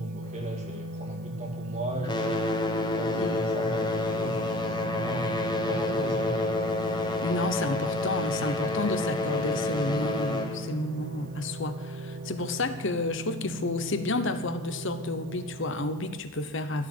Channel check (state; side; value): noise; right; hiss, 29 dB below the sound